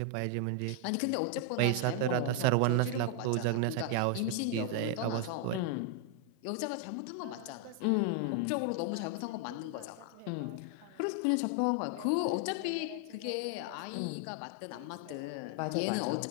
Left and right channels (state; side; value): different; both; correlation 0.00